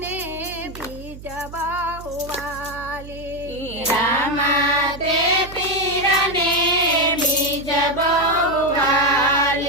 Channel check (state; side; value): noise; right; hum, 15 dB below the sound